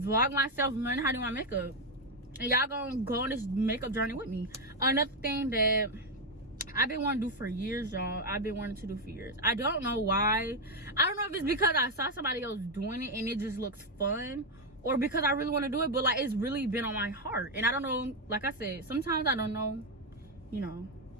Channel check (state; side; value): normal; both; correlation 0.05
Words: myself learning how to do my makeup, and y'all gonna go on this makeup journey with me. Another thing that I've been wanting to do for years, y'all. I don't know why. I don't know if it's because I saw somebody else doing it and it just looks fun, or because I really want to do it, but like, it's really been on my heart. And I don't know, like I said, sometimes I don't know, you know,